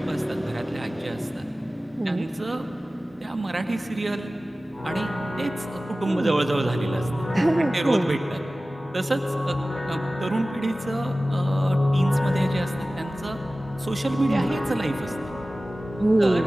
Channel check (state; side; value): normal; both; correlation 0.97